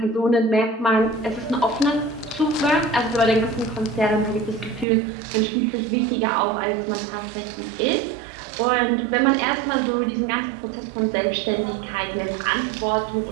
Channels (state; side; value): drops out; left; at 4.9 s